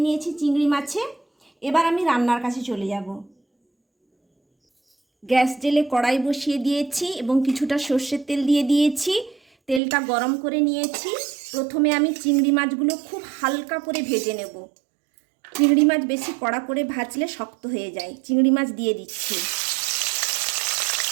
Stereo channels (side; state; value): left; drops out; at 9.8 s